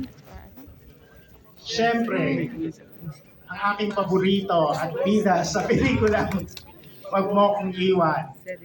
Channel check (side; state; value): both; identical; correlation 1.00